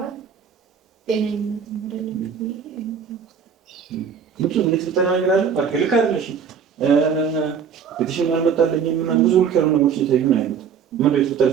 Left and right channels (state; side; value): quieter; left; 7.0 dB